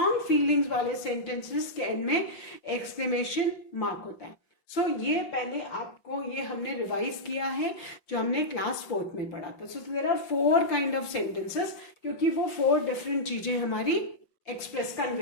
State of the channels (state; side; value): late; right; 5.9 ms